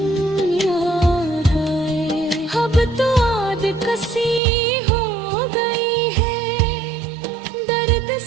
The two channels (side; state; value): left; drops out; at 4.4 s